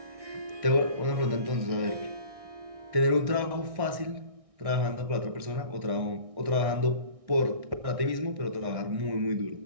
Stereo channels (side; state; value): left; late; 1.6 ms